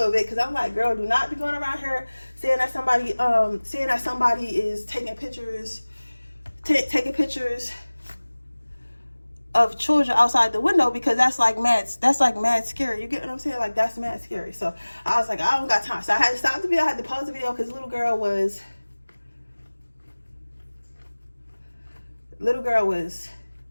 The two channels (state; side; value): inverted; both; correlation -1.00